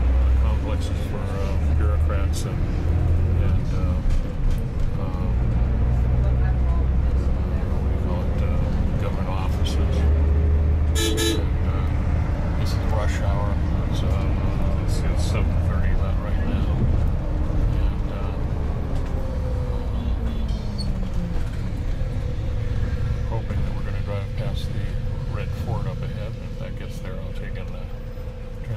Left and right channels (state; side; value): identical; both; correlation 1.00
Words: complexes for bureaucrats and government offices. And, this is rush hour. So it's 7:30 about right now. And hoping that we're going to drive past the red Ford up ahead. And if that gets there, I'll take and